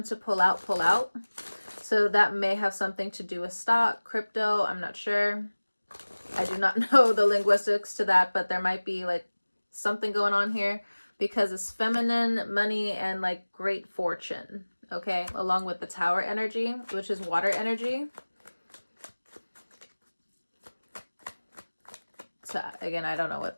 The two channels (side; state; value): both; inverted; correlation -1.00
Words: to pull out, pull out. So that may have something to do with stock, crypto, I'm not sure. I do not know the linguistics to that, but there might be like something going on here because it's feminine, money, and like great fortune, okay? Along with the tower energy, which is water energy. So again, I don't know